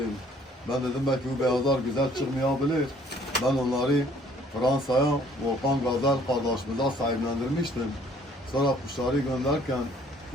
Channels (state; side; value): normal; both; correlation 0.60